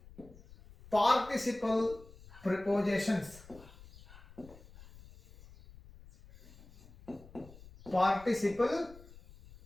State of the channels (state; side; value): noise; left; rumble, 21 dB below the sound